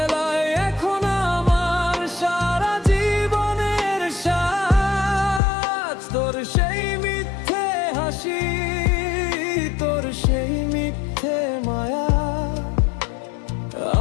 এখন আমার সারা জীবনের সাজ। তোর সেই মিথ্যে হাসি, তোর সেই মিথ্যে মায়া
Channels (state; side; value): drops out; right; at 5.4 s